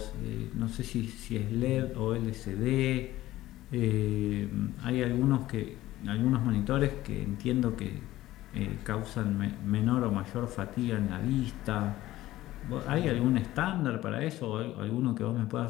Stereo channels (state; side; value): quieter; right; 15.7 dB